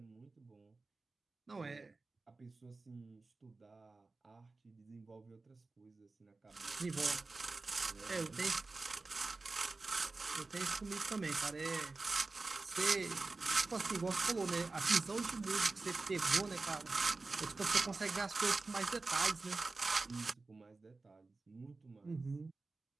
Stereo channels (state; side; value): quieter; left; 3.6 dB